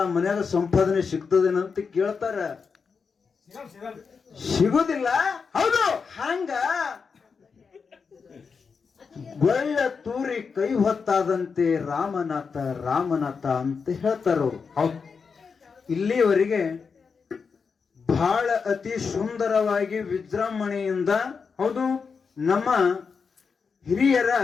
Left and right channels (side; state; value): right; quieter; 5.5 dB